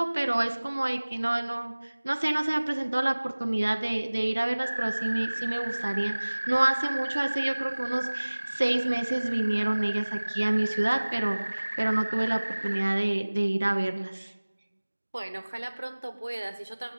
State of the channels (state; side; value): inverted; both; correlation -1.00